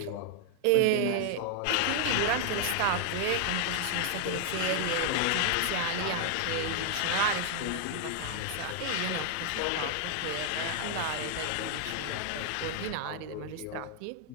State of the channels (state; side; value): different; both; correlation 0.00